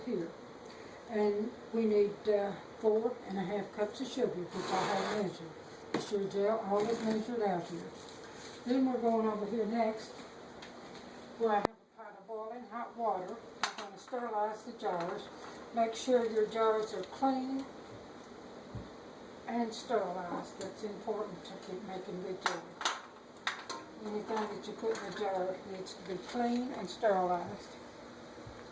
And we need 4 1/2 cups of sugar, which I have measured. The Sure Gel, all is measured out here. Then we're going over here next, where I have a pot of boiling hot water. I'm going to sterilize the jars. Make sure your jars are clean and sterilized. That's important to keep making good jelly. Anything that you put in the jar needs to be clean and sterilized.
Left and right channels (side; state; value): both; identical; correlation 1.00